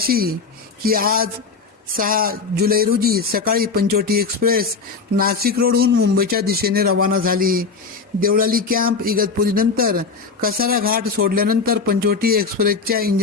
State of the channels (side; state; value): right; quieter; 4.8 dB